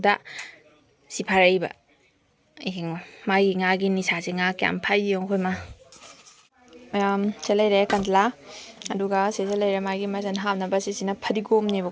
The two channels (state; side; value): identical; both; correlation 1.00